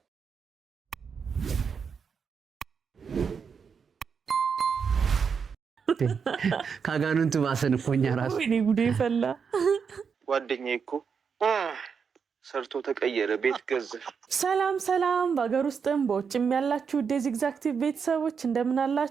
ካጋኑንቱ ባሰን እኮ እኛ ራሱ ወይኔ ጉዴ ፈላ። ጓደኛዬ እኮ ሰርቶ ተቀየረ፣ ቤት ገዛ። ሰላም ሰላም፣ በሀገር ውስጥም በውጭም ያላችሁ ዴዚግዛክቲቭ ቤተሰቦች እንደምን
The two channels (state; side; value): quieter; left; 6.2 dB